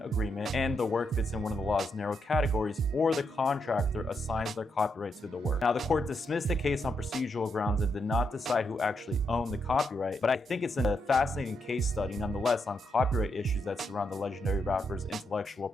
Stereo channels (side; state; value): both; normal; correlation 0.81